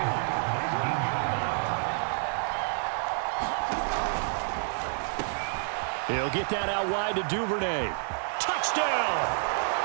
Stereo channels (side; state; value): left; silent; 59 dB below the other